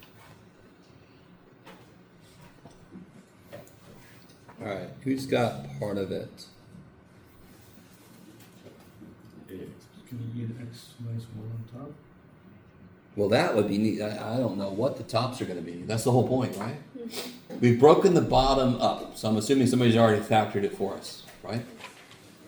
All right, who's got part of it? AX. Can you get x minus one on top? Well, that would be neat. I don't know what the tops are going to be. That's the whole point, right? We've broken the bottom up, so I'm assuming somebody's already factored it for us, right?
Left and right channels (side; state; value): both; identical; correlation 1.00